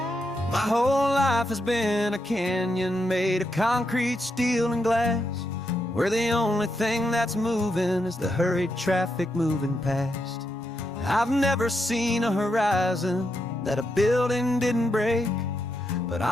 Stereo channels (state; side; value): normal; both; correlation 0.82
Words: My whole life has been a canyon made of concrete, steel, and glass, where the only thing that's moving is the hurried traffic moving past. I've never seen a horizon that a building didn't break, but